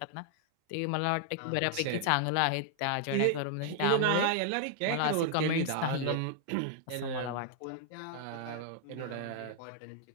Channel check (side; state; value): both; different; correlation 0.00